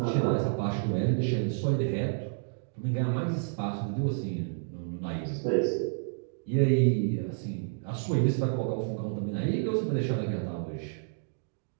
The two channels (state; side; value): silent; left; digital silence